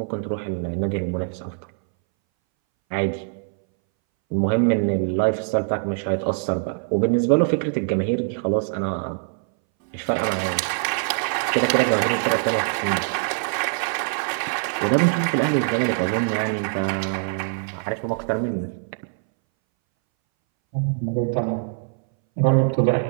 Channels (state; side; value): silent; left; 61 dB below the other